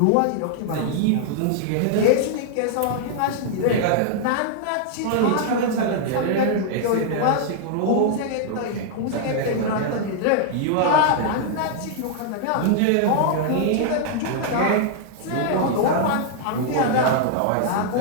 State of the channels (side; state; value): both; different; correlation -0.01